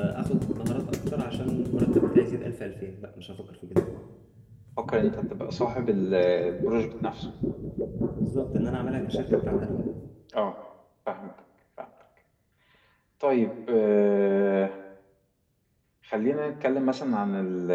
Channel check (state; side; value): identical; both; correlation 1.00